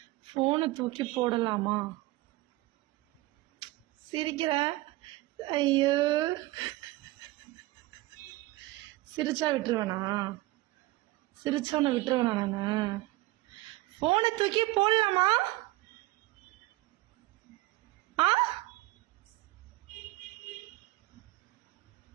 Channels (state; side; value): quieter; left; 19.2 dB